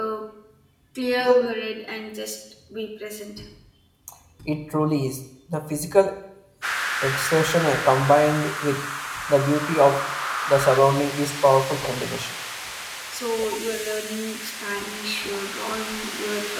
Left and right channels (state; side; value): identical; both; correlation 1.00